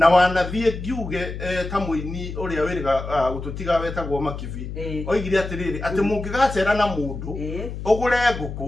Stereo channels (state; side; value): noise; left; hum, 8 dB below the sound